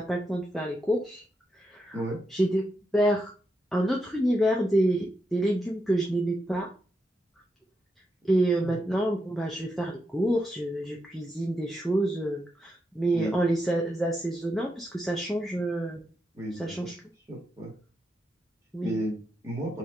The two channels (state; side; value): normal; both; correlation 0.84